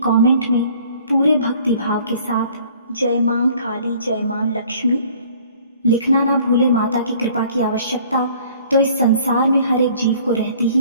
कमेंट में पूरे भक्ति भाव के साथ जय मां काली, जय मां लक्ष्मी लिखना ना भूले। माता की कृपा की आवश्यकता तो इस संसार में हर एक जीव को रहती ही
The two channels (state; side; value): inverted; both; correlation -0.54